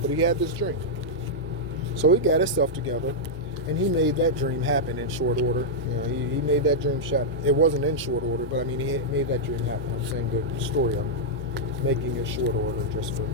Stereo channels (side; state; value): both; normal; correlation -0.06